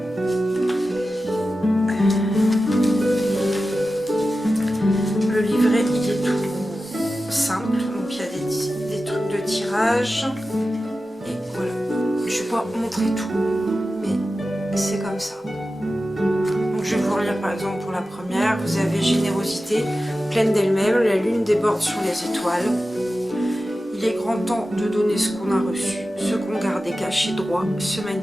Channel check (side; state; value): both; normal; correlation 0.93